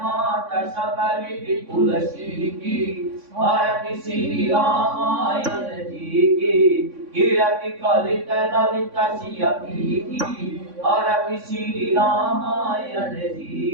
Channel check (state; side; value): late; left; 3.6 ms